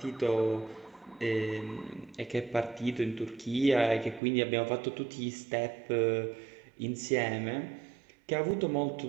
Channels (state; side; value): drops out; left; at 4.2 s